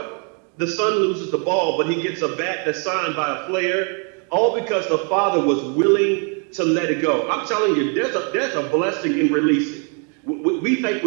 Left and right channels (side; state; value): left; quieter; 38.8 dB